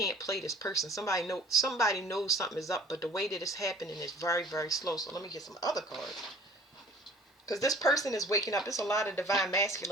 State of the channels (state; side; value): normal; both; correlation 0.50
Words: play this person. Somebody knows something is up, but the way that it's happening is very, very slow. So let me get some other cards. Because this person is waking up. There's a lot of divine